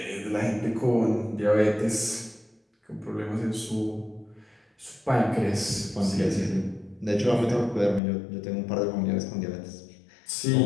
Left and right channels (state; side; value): drops out; right; at 8.0 s